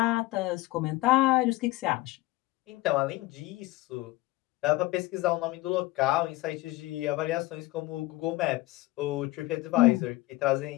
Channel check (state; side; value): quieter; right; 19.5 dB